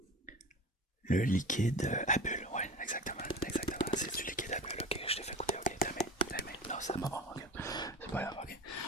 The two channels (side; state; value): both; normal; correlation 0.34